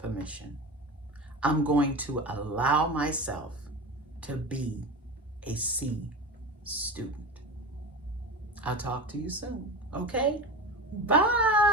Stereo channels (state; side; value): normal; both; correlation 0.27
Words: I'm going to allow myself to be a C student. I'll talk to you soon, okay?